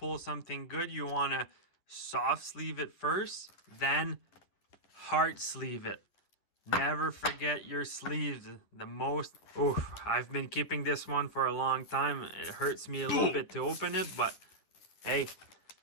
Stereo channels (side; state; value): right; late; 10 ms